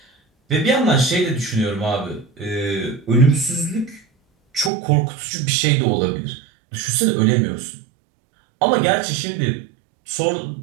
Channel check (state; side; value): drops out; left; at 4.7 s